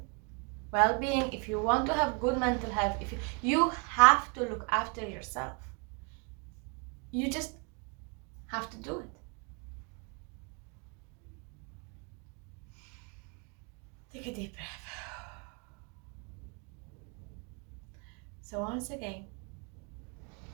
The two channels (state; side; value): quieter; left; 33.1 dB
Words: well-being, if you want to have good mental health, you have to look after yourself. You just have to do it. Take a deep breath. So once again,